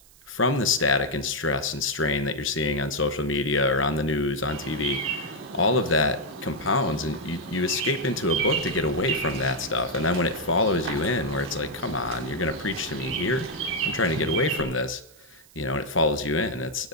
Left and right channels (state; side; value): noise; right; hiss, 26 dB below the sound